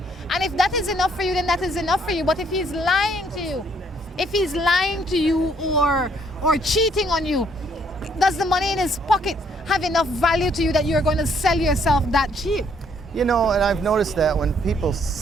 And if that is enough for you, then that is enough for you. But if he's lying to you, or cheating on you, does the money in his pocket have enough value to you that you're going to sell yourself that cheap? You know, and I've noticed that when people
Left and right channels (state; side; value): normal; both; correlation 0.67